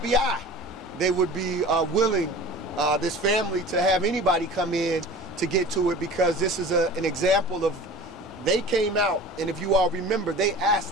they would be willing, this family, to have anybody come in to get to it, because this is an example of, they came out, and if you all remember,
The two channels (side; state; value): both; normal; correlation 0.39